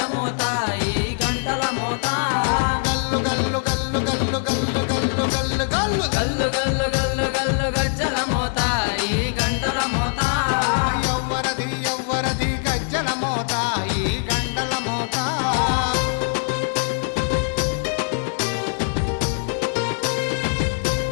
మోత ఈ గంటల మోత గల్లు గల్లు గల్లు గల్లు గల్లు గల్లు గల్లు గల్లు గల్లు గల్లు గల్లు గల్లు గజ్జల మోత ఈ గంటల మోత ఎవ్వరది ఎవ్వరది గజ్జల మోత ఈ గంటల మోత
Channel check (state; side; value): silent; right; 64 dB below the other